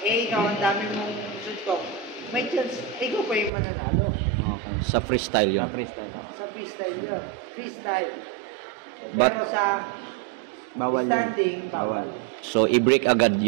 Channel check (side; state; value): left; drops out; at 3.5 s